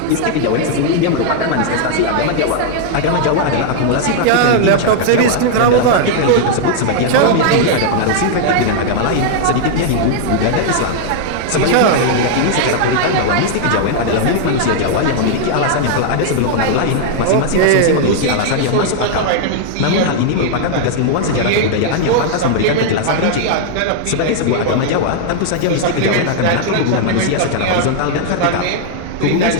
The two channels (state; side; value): different; both; correlation 0.00